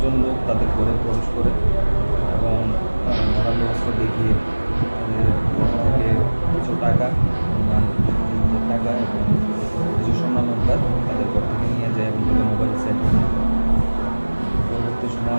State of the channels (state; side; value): inverted; both; correlation -1.00